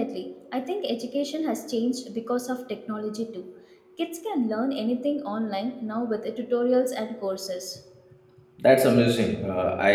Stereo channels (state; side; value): identical; both; correlation 1.00